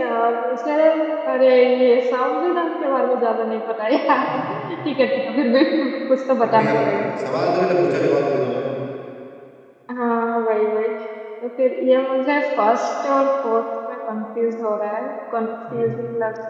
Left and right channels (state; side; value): identical; both; correlation 1.00